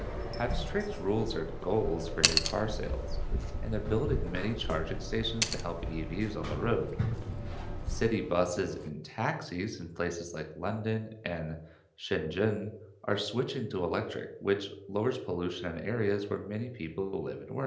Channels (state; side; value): identical; both; correlation 1.00